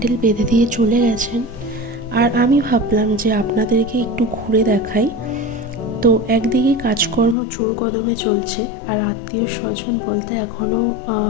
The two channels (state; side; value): drops out; right; at 7.4 s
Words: বেঁধে দিয়ে চলে গেছেন, আর আমি ভাবলাম যে আপনাদেরকে একটু ঘুরে দেখাই। তো একদিকে কাজকর্ম জোর কদমে চলছে, আর আত্মীয় স্বজন বলতে এখনও